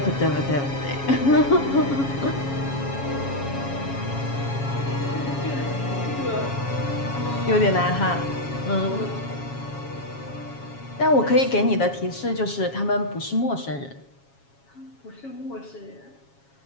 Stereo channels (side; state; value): right; late; 7.3 ms